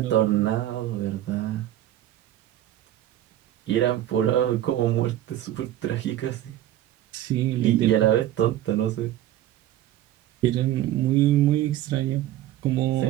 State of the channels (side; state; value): left; quieter; 13.0 dB